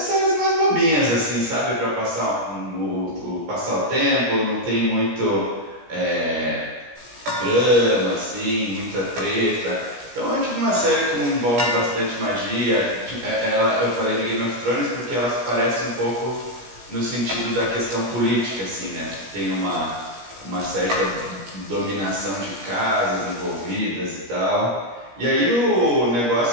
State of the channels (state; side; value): late; left; 17 ms